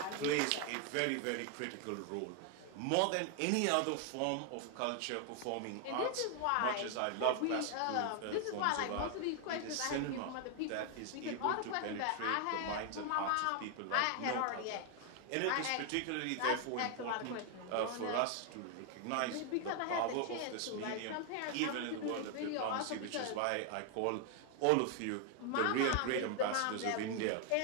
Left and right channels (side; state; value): both; different; correlation 0.01